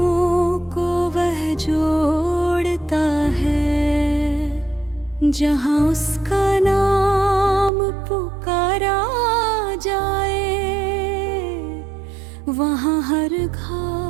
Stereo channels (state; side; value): drops out; left; at 7.7 s